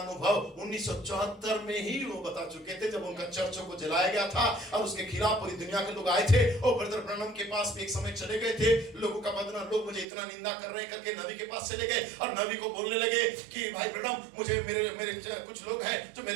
1974 में ही वो बता चुके थे, जब उनका चर्चों को जलाया गया था और उसके खिलाफ पूरी दुनिया के लोग आए थे। और ब्रदर ब्रनम के पास भी एक समय चले गए थे, लोगों का बदनाम, लोग मुझे इतना निंदा कर रहे हैं करके नबी के पास चले गए और नबी को बोलने लगे कि भाई ब्रनम मुझे मेरे कुछ लोग हैं जो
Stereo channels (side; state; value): left; drops out; at 10.1 s